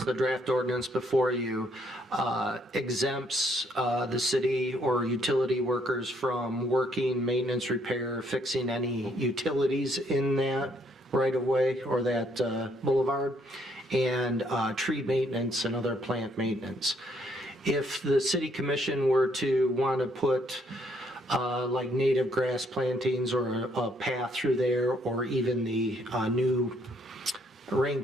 the draft ordinance before you exempts the city or utility workers from working, maintenance, repair, fixing any utilities in that right-of-way or that boulevard, and tree maintenance and other plant maintenance. If the city commission were to want to put like native grass plantings or a path through there, or even the new rain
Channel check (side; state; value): both; normal; correlation 0.69